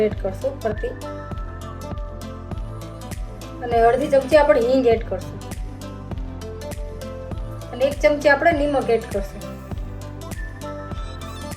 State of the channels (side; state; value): both; identical; correlation 1.00